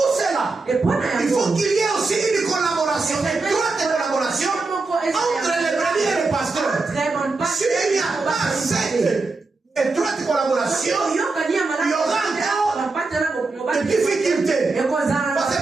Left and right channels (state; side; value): quieter; left; 3.7 dB